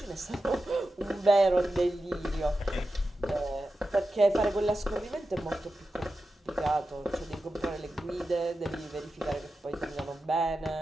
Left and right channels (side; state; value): both; normal; correlation 0.92